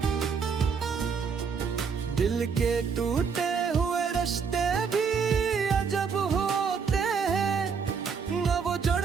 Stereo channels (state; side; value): quieter; left; 5.9 dB